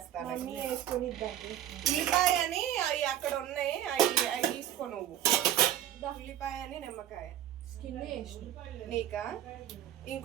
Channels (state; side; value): quieter; left; 11.6 dB